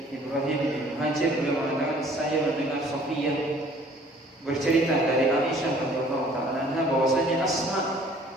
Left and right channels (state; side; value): normal; both; correlation 0.55